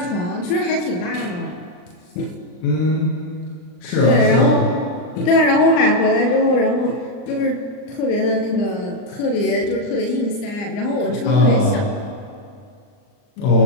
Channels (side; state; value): right; late; 39 ms